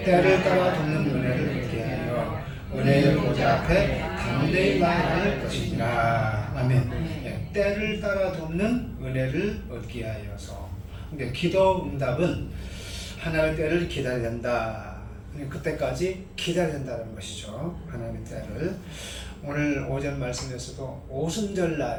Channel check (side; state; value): both; identical; correlation 1.00